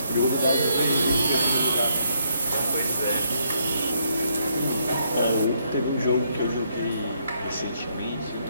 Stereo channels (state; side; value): inverted; both; correlation -0.73